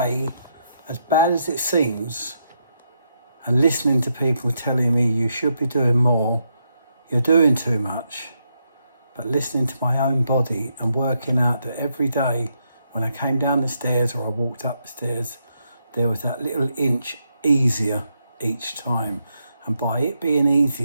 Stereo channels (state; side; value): inverted; both; correlation -0.79